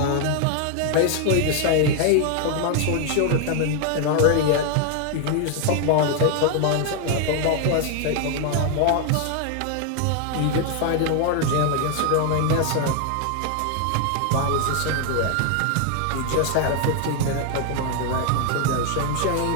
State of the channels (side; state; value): both; different; correlation 0.00